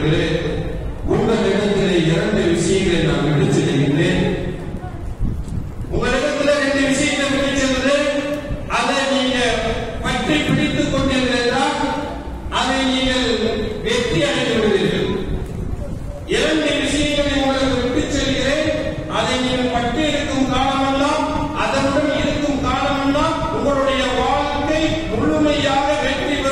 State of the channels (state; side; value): identical; both; correlation 1.00